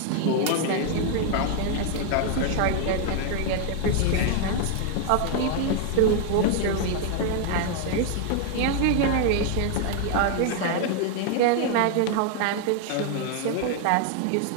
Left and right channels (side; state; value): both; different; correlation 0.00